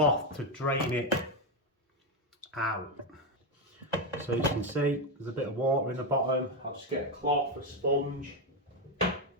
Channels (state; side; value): normal; both; correlation 0.08